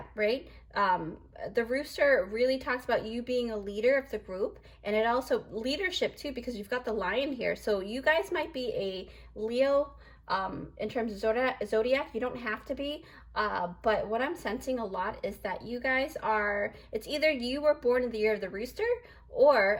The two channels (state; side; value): identical; both; correlation 1.00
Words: right? The rooster really talks about you being a leader of the group, and it also leadership too, because you've got the lion here. So you guys might be a Leo in terms of zodiac. You don't have to be, but what I'm sensing a lot is that you guys are, it's either you were born in the year of the rooster,